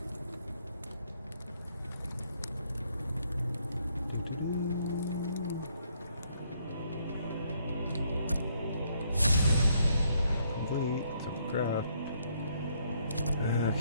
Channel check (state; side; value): inverted; both; correlation -0.71